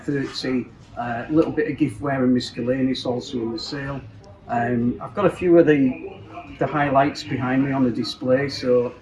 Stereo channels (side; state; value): both; identical; correlation 1.00